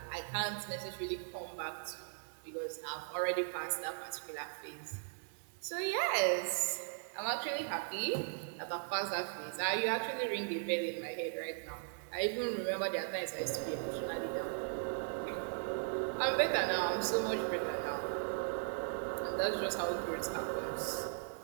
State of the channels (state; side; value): silent; left; digital silence